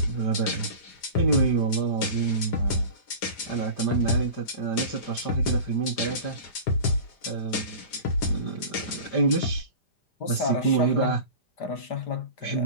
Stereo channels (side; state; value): right; late; 5.0 ms